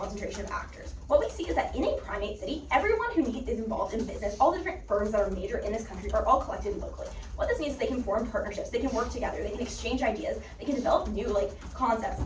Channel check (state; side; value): identical; both; correlation 1.00